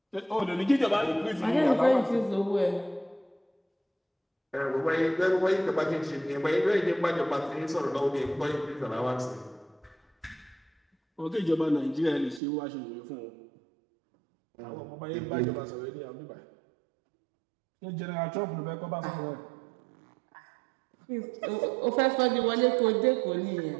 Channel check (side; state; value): left; drops out; at 12.4 s